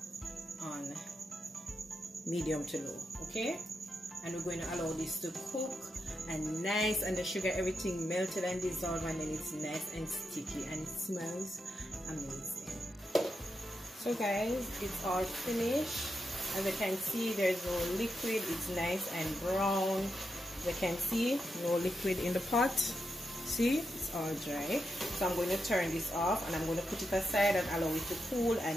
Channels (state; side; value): normal; both; correlation 0.85